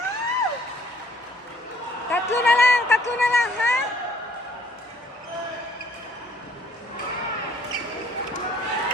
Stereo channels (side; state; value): both; normal; correlation 0.60